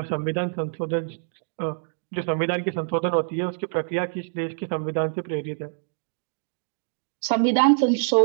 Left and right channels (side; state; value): left; silent; digital silence